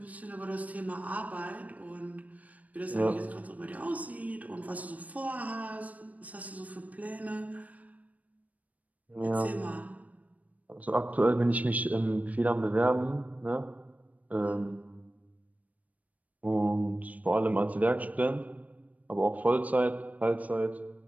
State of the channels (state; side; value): late; left; 0.072 ms